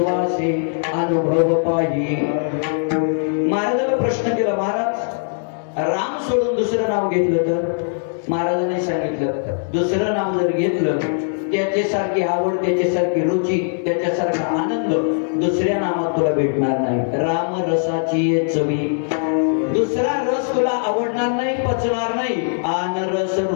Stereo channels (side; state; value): right; silent; digital silence